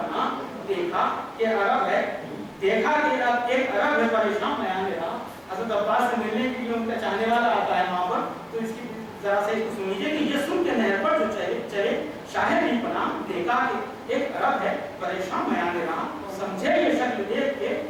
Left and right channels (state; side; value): identical; both; correlation 1.00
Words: देखा कि अरब है देखा कि एक अरब है परेशान बयान दे रहा हज़रत अब्बास से मिलने के लिए उनका चाहने वाला आता है वहां पर तो इसकी जरा से इसको सुनिए कि ये सुन के नहर पर जो चले शाहिद भी पना देखा कि एक अरब है परेशान बयान दे रहा समझे ये शक्ल देख के